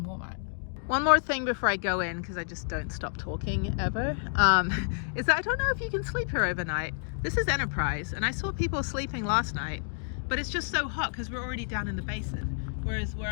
Walmart. One more thing before I go in, because I just don't stop talking ever, is that I don't know if you can sleep here overnight. This is Enterprise, and I saw people sleeping last night, but it's just so hot because we're already down in the basin. Whereas where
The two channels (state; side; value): silent; right; digital silence